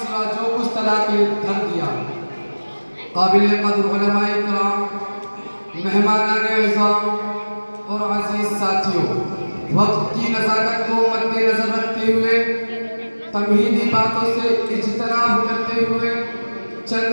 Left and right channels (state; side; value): inverted; both; correlation -1.00